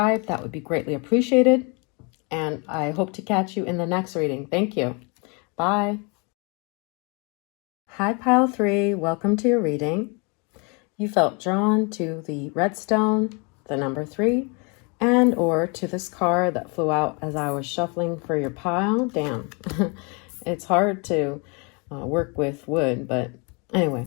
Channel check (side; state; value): right; quieter; 32.2 dB